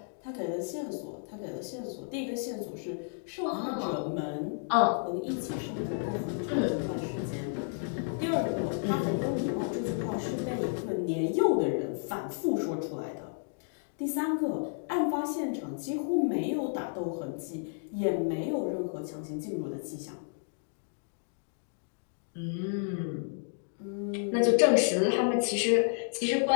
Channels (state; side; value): silent; right; digital silence